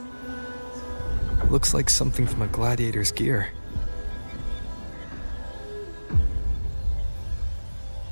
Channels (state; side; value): inverted; both; correlation -1.00